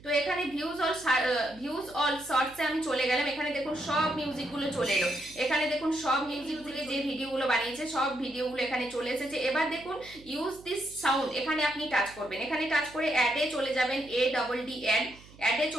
তো এখানে ভিউজ অল শর্টসে আমি চলে গেলাম, এখানে দেখুন সব মিউজিকগুলো চলে এলো। এখানে দেখুন সব মিউজিক থেকে যে ভিডিওগুলো বানিয়েছে সব ভিডিওগুলো এখানে চলে এসেছে। এবার দেখুন ইউজ দিস সাউন্ড, এখানে আপনি টাচ করবেন। এখানে টাচ করে অ্যাডে চলে যাবেন, ADD অ্যাডে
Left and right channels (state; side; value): noise; right; hum, 22 dB below the sound